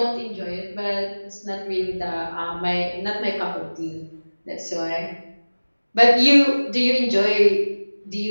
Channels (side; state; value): both; inverted; correlation -1.00